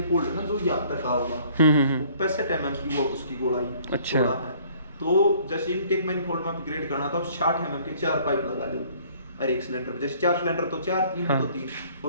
है ना, जो यहाँ तक आ होगा 65 mm की वो उसकी गोलाई अच्छा है, तो जैसे इनटेक मैनिफोल्ड में अपग्रेड करना तो 60 mm के 4 पाइप लगा दो हर एक सिलेंडर, जैसे 4 सिलेंडर तो 4, 3 तो 3,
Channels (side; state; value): both; inverted; correlation -0.57